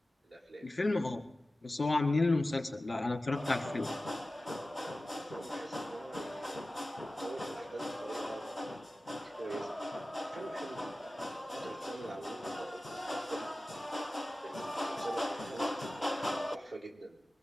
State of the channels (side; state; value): both; normal; correlation 0.96